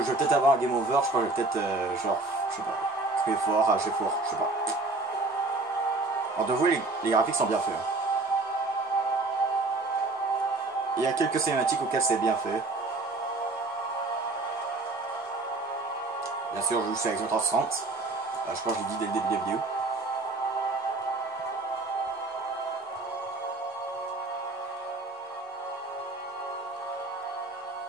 peut-être avoir un game over, je crois que je vais peut-être, genre, je sais pas, crier fort, rager fort, je sais pas. Alors de vous, les graphiques sont bien faits. Il y a quelques cinématiques auxquelles c'est bien fait. Bien sûr, je joue sur Xbox 360. Je crois que je l'ai dit dès le début de la vidéo.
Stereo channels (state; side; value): quieter; left; 3.2 dB